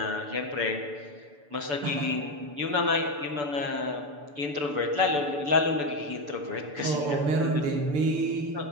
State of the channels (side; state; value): left; late; 6.9 ms